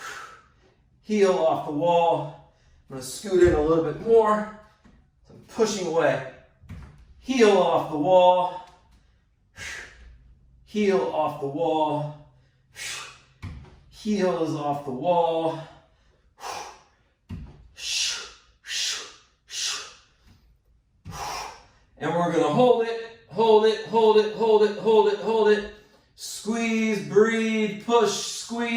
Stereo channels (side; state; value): both; identical; correlation 1.00